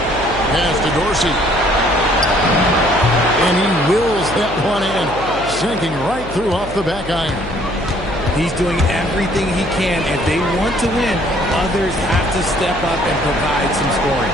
Pass to Dorsey. And he wills that one in, sinking right through off the back iron. He's doing everything he can. If they want to win, others have to step up and provide some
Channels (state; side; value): noise; left; hum, 13 dB below the sound